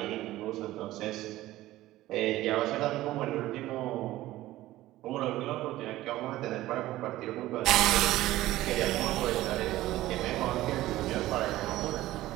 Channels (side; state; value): left; quieter; 16.0 dB